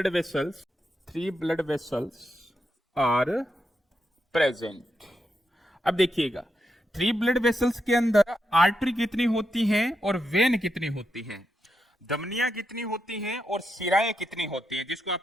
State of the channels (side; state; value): both; normal; correlation 0.84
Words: वेसल्स आर प्रेजेंट। अब देखिएगा 3 ब्लड वेसल्स के अंदर आर्टरी कितनी होती है और वेन कितनी होती है, धमनियां कितनी होती हैं और शिराएं कितनी होती हैं, जिसको